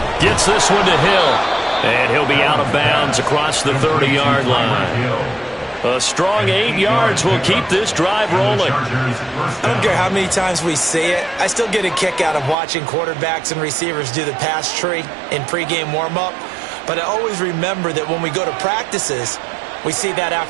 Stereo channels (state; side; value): drops out; left; at 12.6 s